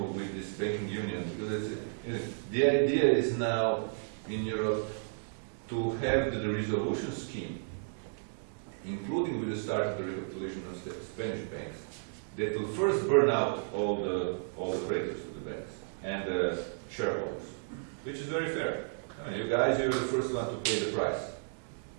this banking union, because the idea is now in Europe to have the resolution scheme, including with the start of the recapitalization of Spanish banks, that will first burn out all the creditors of the banks and the shareholders, which is very fair. I mean, you guys, you're the first one to pay the price.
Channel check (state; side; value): silent; left; digital silence